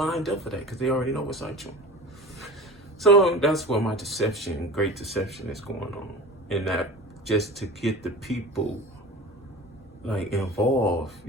up for that because they already know what's out you. So that's where my great deception is going on. And that just to get the people like involved,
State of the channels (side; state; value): both; normal; correlation 0.35